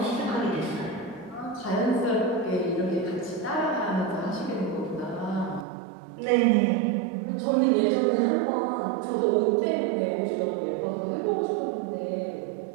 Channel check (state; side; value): drops out; left; at 5.7 s